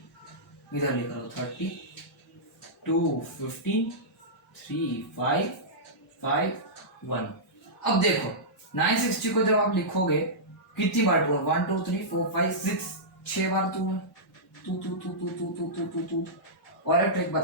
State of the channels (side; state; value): both; normal; correlation -0.15